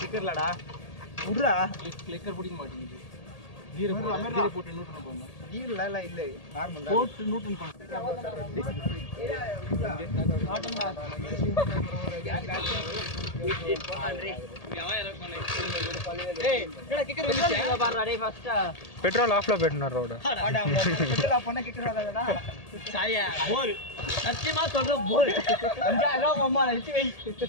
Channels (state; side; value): late; right; 1.8 ms